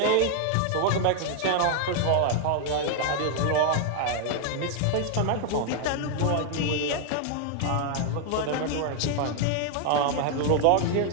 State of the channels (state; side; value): different; both; correlation 0.00